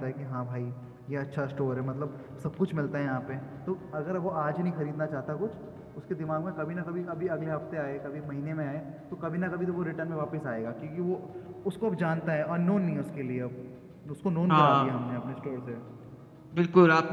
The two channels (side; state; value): both; identical; correlation 1.00